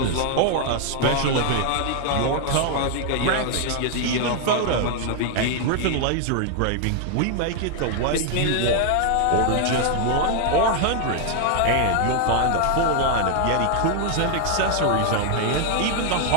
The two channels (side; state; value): both; different; correlation 0.00